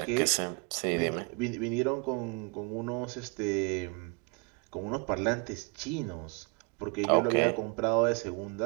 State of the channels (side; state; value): left; quieter; 31.6 dB